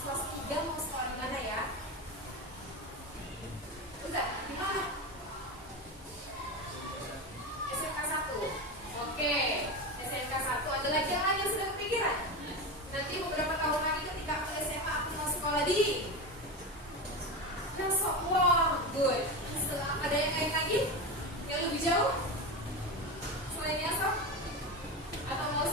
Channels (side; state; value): both; normal; correlation 0.20